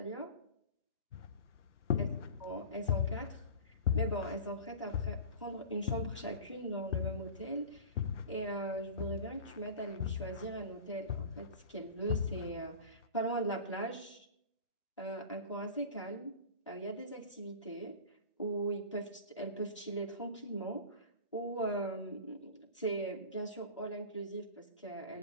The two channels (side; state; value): both; inverted; correlation -0.35